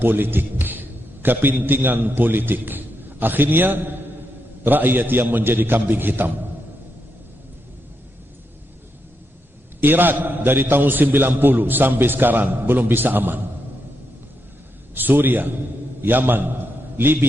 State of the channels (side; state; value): both; normal; correlation 0.83